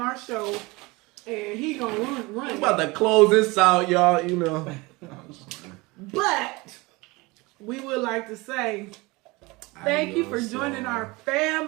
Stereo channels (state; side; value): quieter; left; 23.8 dB